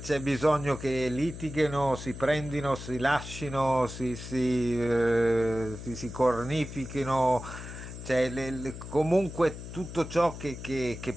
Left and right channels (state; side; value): noise; left; hum, 11 dB below the sound